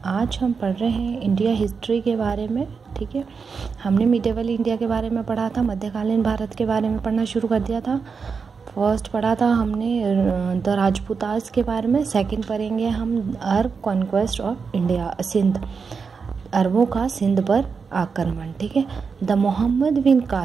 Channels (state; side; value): quieter; left; 5.4 dB